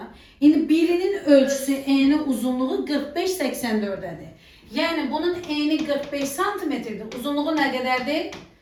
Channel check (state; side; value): identical; both; correlation 1.00